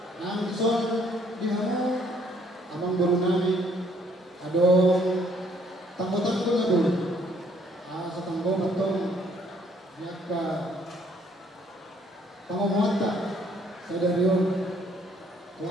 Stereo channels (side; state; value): both; normal; correlation 0.65